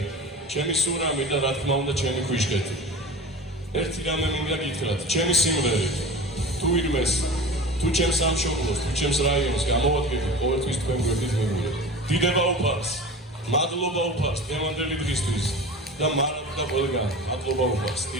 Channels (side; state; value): both; normal; correlation 0.34